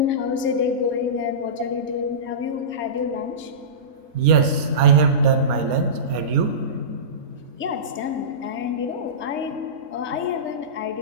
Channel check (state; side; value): late; left; 4.3 ms